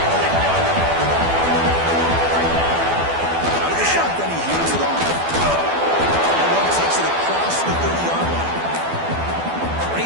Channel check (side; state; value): left; late; 12 ms